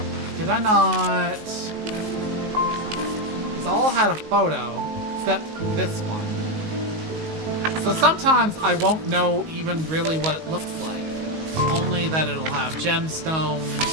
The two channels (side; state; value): left; late; 19 ms